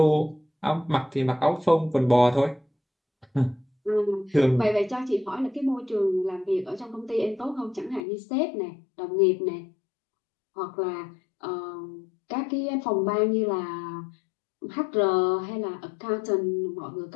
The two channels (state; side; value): drops out; right; at 8.0 s